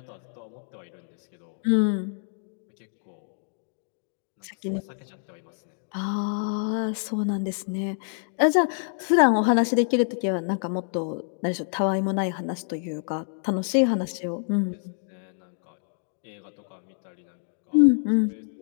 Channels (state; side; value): silent; right; digital silence